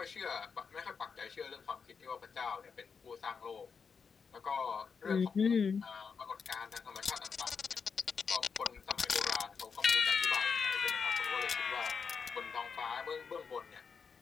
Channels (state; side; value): quieter; right; 5.8 dB